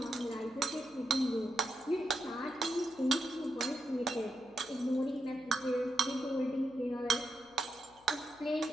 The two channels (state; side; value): noise; left; hum, 29 dB below the sound